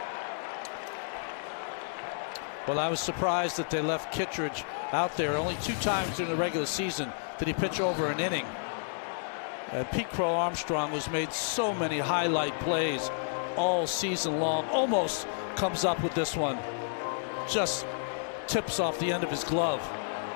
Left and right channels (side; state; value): right; silent; digital silence